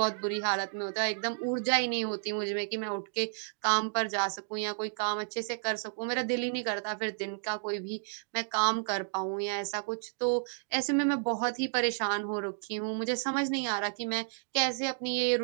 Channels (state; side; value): silent; left; digital silence